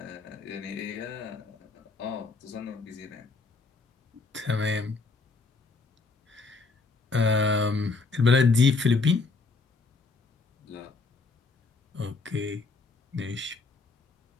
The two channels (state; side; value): quieter; right; 4.0 dB